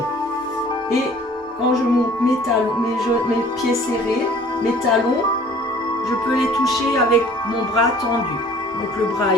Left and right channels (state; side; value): normal; both; correlation 0.52